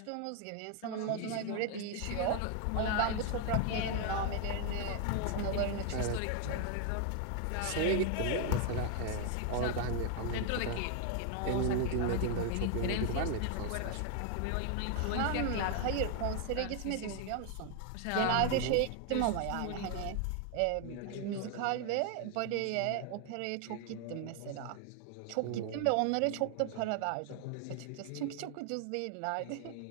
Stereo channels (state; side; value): different; both; correlation 0.00